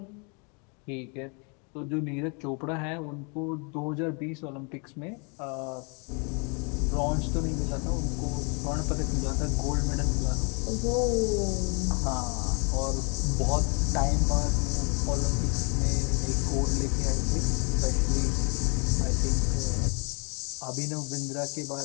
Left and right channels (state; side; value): quieter; right; 35.0 dB